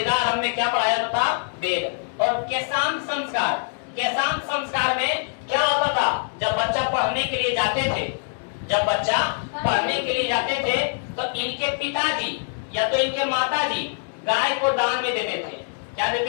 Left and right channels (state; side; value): silent; right; digital silence